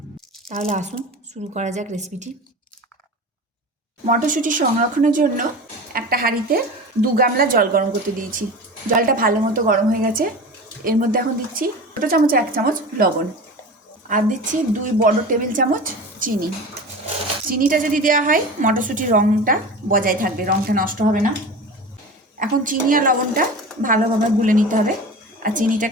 তাহলে আসুন শুরু করা যাক রেসিপিটি। মটরশুঁটি সংরক্ষণের জন্য একটা হাঁড়িতে 2 গামলা জল গরম করতে দিয়েছি। জলটা ভালো মতো গরম হয়ে গেছে। এর মধ্যে এখন দিচ্ছি ছোটো চামচে 1 চামচ লবণ, আর দিচ্ছি 2 বড় টেবিল চামচ চিনি। চিনিটা যদি দেওয়া হয় মটরশুঁটির রঙটা বজায় থাকবে, রঙটা নষ্ট হবে না। এখন চিনি আর লবণটা ভালোভাবে গুলে নিতে হবে আর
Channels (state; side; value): normal; both; correlation 0.32